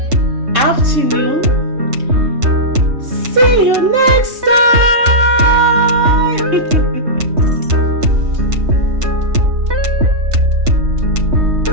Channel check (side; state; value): left; late; 3.6 ms